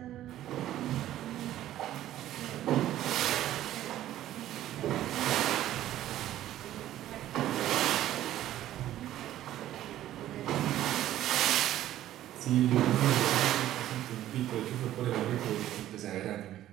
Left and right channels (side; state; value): left; quieter; 13.2 dB